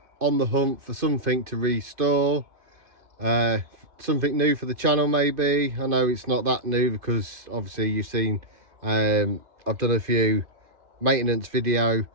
on the hunt for something to restore, something new for the channel maybe. I know it's not that new because obviously you've seen I've done a few maintenance video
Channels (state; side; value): late; left; 2.5 ms